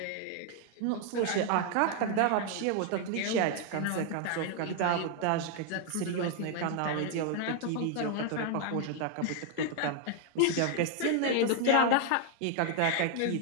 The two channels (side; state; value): both; different; correlation 0.00